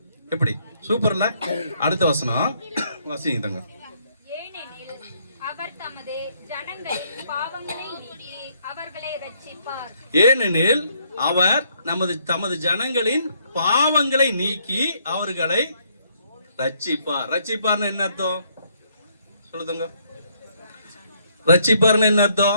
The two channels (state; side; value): inverted; both; correlation -0.70